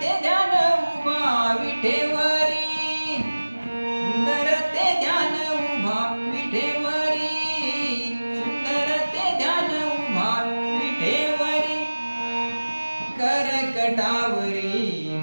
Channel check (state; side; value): inverted; both; correlation -1.00